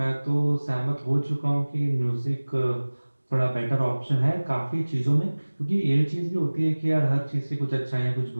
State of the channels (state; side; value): inverted; both; correlation -1.00